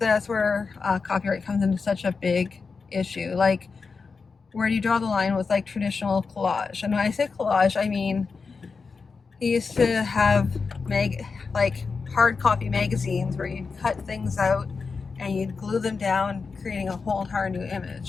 copyright comes into such a big issue. Like, where do you draw the line with, like, traditional collage? And when I say collage, I mean, he used to have hard copy magazines where you'd cut things out and you'd glue them down, creating a whole entire new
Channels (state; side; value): quieter; right; 4.8 dB